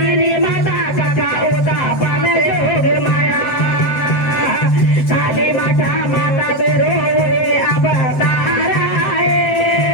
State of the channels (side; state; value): right; late; 7.8 ms